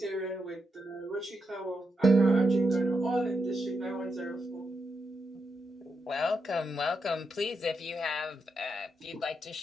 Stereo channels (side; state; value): both; normal; correlation 0.84